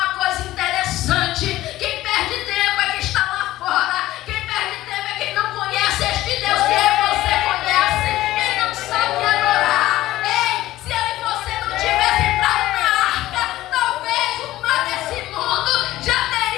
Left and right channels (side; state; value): right; quieter; 15.6 dB